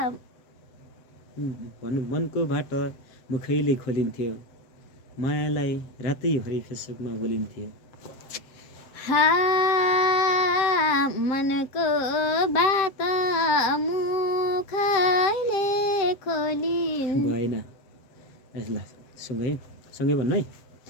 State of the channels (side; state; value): right; late; 7.8 ms